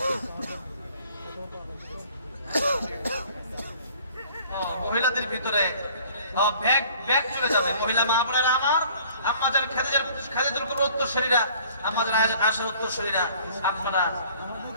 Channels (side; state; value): both; inverted; correlation -0.54